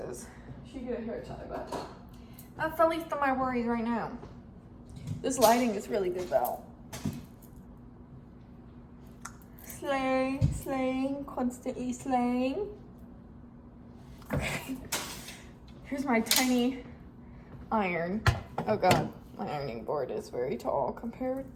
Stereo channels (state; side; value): identical; both; correlation 1.00